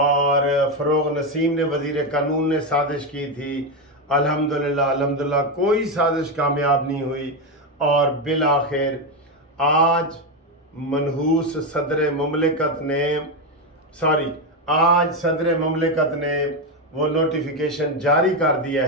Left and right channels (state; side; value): normal; both; correlation 0.09